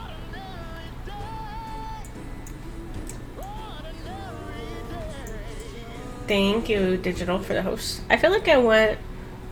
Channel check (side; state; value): both; identical; correlation 1.00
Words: Thank you, Digital, for the host. I feel like I want